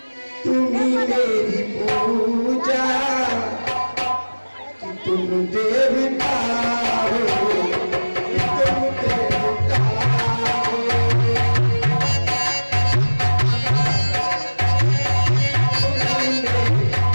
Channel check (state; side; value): inverted; both; correlation -1.00